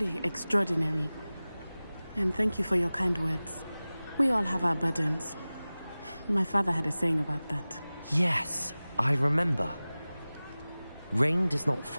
extraordinary. And thank you for your kind words. We all have our burdens. My father had a saying about that. Yes, I remember. Rain does not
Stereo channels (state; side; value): inverted; both; correlation -0.98